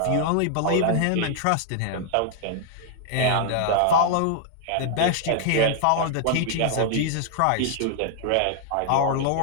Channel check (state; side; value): different; both; correlation 0.00